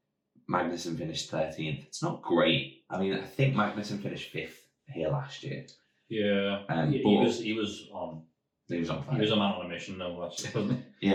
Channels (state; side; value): identical; both; correlation 1.00